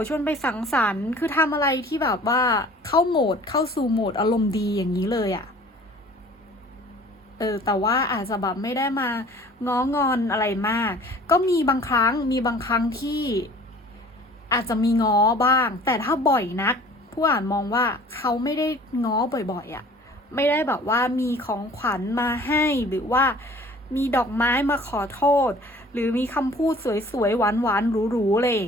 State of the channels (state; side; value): normal; both; correlation 0.49